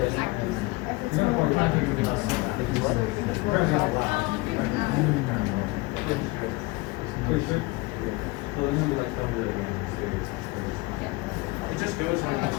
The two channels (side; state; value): right; quieter; 22.9 dB